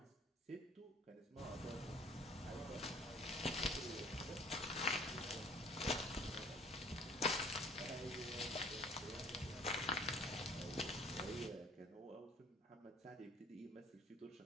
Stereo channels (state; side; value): normal; both; correlation 0.53